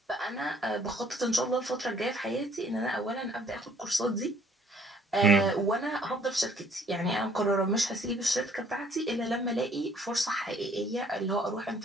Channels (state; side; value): normal; both; correlation 0.60